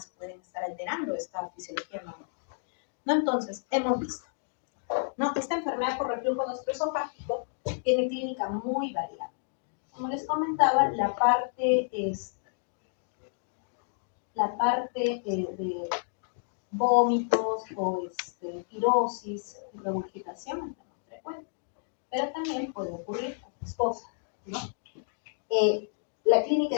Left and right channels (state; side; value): silent; right; digital silence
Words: pueden estar alterando esta fisiología normal, ¿no? Entonces, hemos visto, ¿no? Esta enfermedad por reflujo gastroesofágico tiene clínica muy variada. Como les comentaba, la parte de vómitos o pirosis y regurgitación es la más frecuente, pero también puede ocurrir otras cosas, ¿no? La clínica